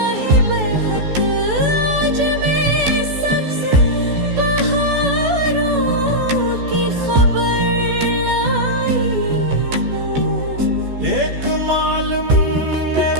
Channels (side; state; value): left; late; 14 ms